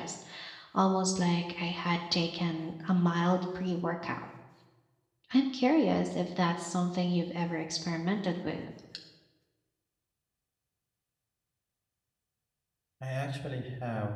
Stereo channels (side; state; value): both; identical; correlation 1.00